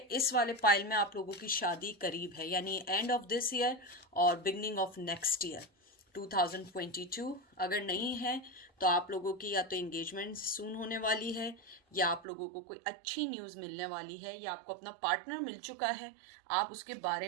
इस वाले पाइल में आप लोगों की शादी करीब है, यानी एंड ऑफ दिस ईयर और बिगनिंग ऑफ नेक्स्ट ईयर 2022। अगर नहीं है तो आप लोगों की या तो एंगेजमेंट सून होने वाली है, या आप लोगों को कोई अच्छी न्यूज़ मिलने वाली है, या आपको अपना पार्टनर मिल चुका है, आप उसके बारे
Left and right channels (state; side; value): drops out; left; at 12.2 s